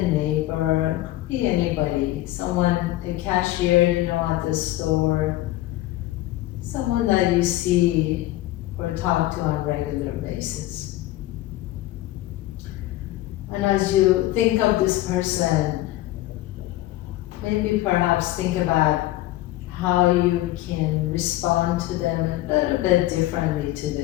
neighbor, could be anybody. Someone, a cashier you know at the store, someone that you see or talk to on a regular basis. And as you think of this person, maybe perhaps think about how you can respond to them a little bit differently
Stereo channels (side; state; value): right; quieter; 16.2 dB